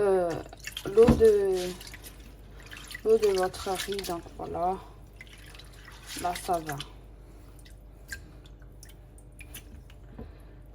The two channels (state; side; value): identical; both; correlation 1.00